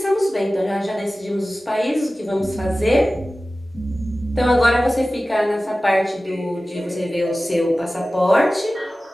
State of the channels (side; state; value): both; normal; correlation 0.96